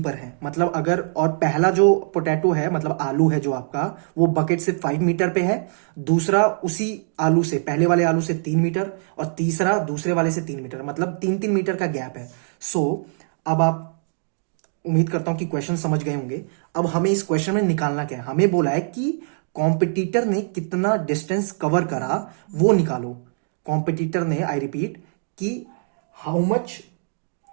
है। मतलब अगर, और पहला जो पोटैटो है मतलब आलू है जो आपका, वो बकेट से 5 मीटर पे है, दूसरा उसी आलू से, पहले वाले आलू से 3 मीटर, और तीसरा दूसरे वाले से 3 मीटर, मतलब 3-3 मीटर का गैप है। सो अब आप, उम्मीद करता हूं कि क्वेश्चन समझ गए होंगे। अब हमें इस क्वेश्चन में निकालना क्या है, हमें बोला है कि कॉम्पिटिटर ने कितना डिस्टेंस कवर करा वो निकालो। कॉम्पिटिटर ने, आई रिपीट, कि how much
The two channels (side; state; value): left; silent; digital silence